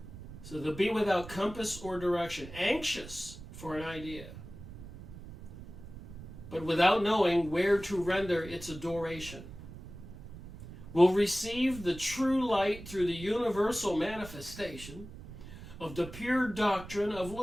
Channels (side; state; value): right; noise; rumble, 14 dB below the sound